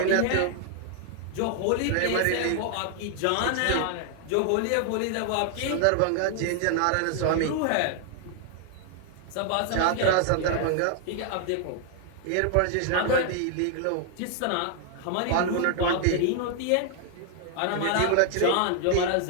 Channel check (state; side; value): different; both; correlation 0.00